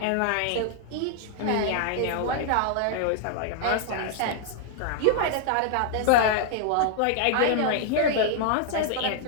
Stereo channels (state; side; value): different; both; correlation 0.00